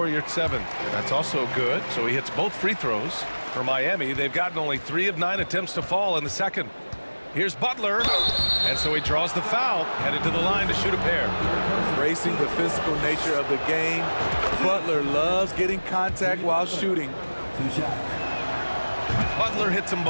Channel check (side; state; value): both; inverted; correlation -1.00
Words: Yurt 7. That's also good, so he hits both free throws. For Miami, they've gotten only 3 of 9 attempts to fall in the second. Here's Butler, and so he draws the foul, headed to the line to shoot a pair. Racing the physical nature of the game, Butler loves getting contact while shooting. Butler hits them